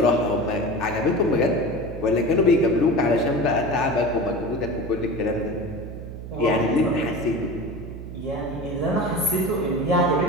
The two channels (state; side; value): noise; right; hum, 10 dB below the sound